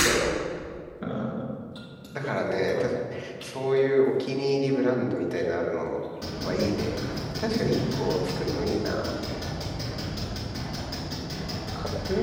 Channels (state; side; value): identical; both; correlation 1.00